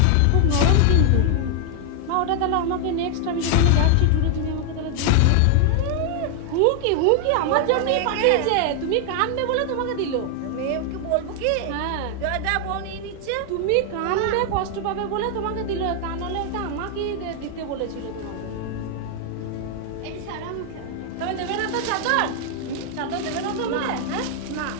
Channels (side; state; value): both; different; correlation 0.00